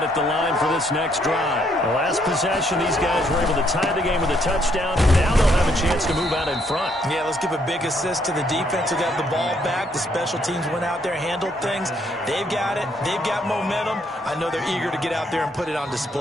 at the line for this next drive. The last possession, these guys were able to tie the game with a touchdown. Now they'll have a chance to move out in front. Yeah, let's give a big assist to the defense who got the ball back. The special teams went out there, handled things. They've got it. They've got momentum. I know they're eager to get out there and put it on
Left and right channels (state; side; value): normal; both; correlation 0.70